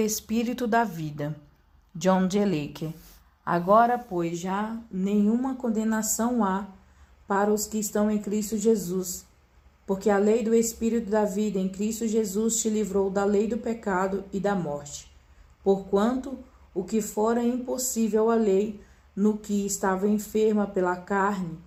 da vida. John G. Lake. Agora, pois, já nenhuma condenação há para os que estão em Cristo Jesus, porque a lei do espírito da vida em Cristo Jesus te livrou da lei do pecado e da morte. Porquanto o que fora impossível à lei, no que estava enferma pela carne,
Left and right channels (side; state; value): both; identical; correlation 1.00